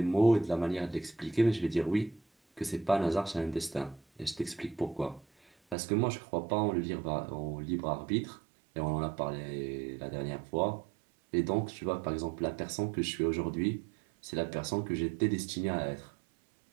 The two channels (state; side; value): drops out; left; at 5.8 s